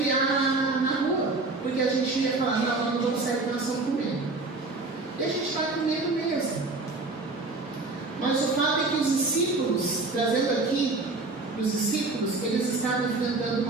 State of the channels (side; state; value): left; quieter; 3.5 dB